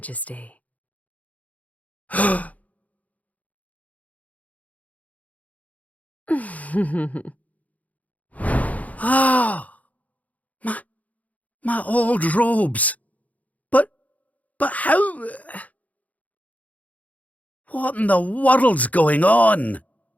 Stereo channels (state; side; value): late; right; 0.073 ms